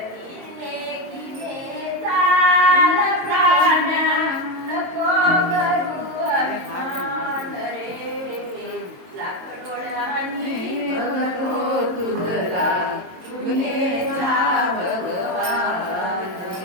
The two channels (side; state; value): left; late; 22 ms